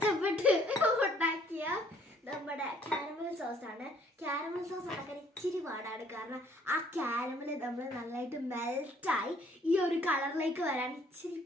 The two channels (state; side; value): normal; both; correlation 0.61